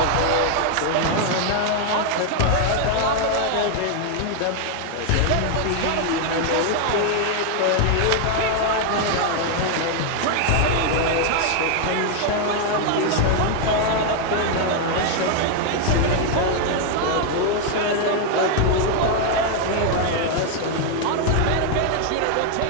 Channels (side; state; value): both; different; correlation 0.00